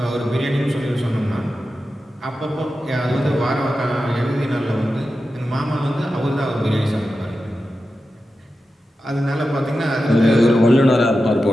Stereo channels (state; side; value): normal; both; correlation 0.92